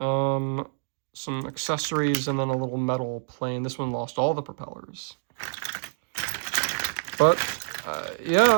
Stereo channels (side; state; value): left; silent; digital silence